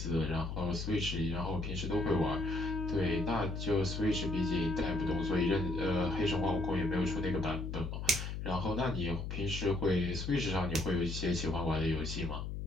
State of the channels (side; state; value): left; noise; hum, 5 dB below the sound